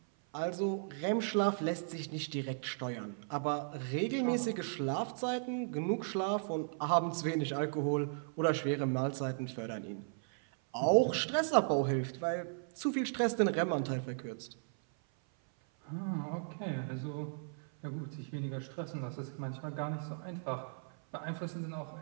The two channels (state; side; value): silent; left; 54 dB below the other